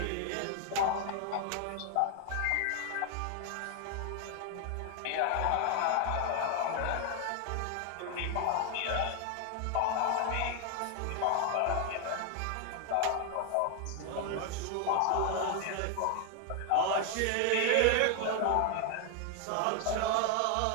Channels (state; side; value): different; both; correlation 0.00